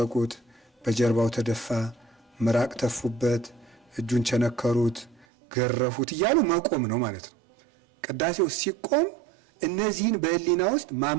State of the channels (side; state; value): left; drops out; at 5.2 s